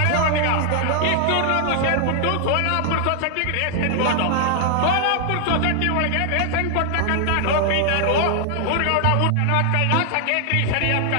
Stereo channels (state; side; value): different; both; correlation 0.00